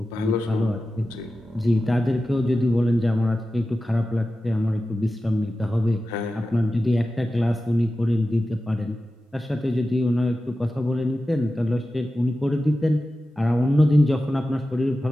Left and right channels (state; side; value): normal; both; correlation 0.94